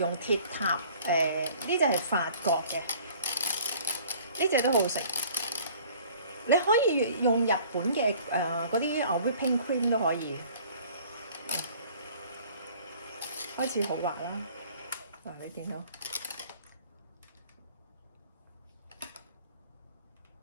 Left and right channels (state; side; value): inverted; both; correlation -0.51